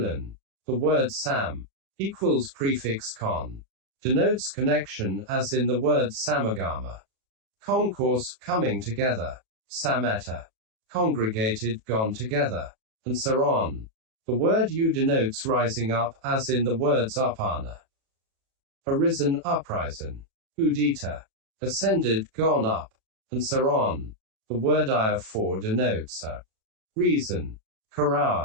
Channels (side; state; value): left; late; 37 ms